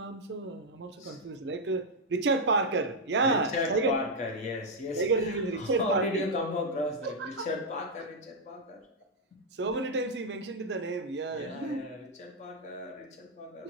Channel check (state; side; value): normal; both; correlation -0.01